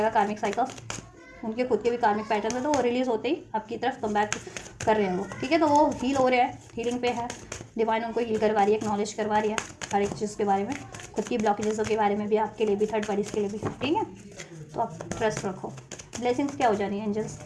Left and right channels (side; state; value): both; identical; correlation 1.00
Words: कार्मिक साइकिल्स उनके खुद के भी कार्मिक पैटर्न है, तो वो रिलीज़ होते ही आपकी तरफ कम बैक कर रहे हैं वो, ठीक है। तो वो हील हो रहे हैं, हीलिंग पे है, डिवाइन उनको हील करवा रही है, एक्नॉलेज करवा रही है हर एक चीज़ के बारे में, खुद की ब्लॉकेजेसों के बारे में भी, आपके लिए भी, थर्ड पार्टीज के लिए भी, ठीक है। तो आप ट्रस्ट रखो। ब्लेसिंग्स क्या हो जा रही है एंजल्स,